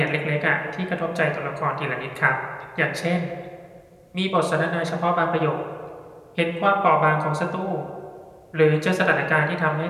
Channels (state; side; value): identical; both; correlation 1.00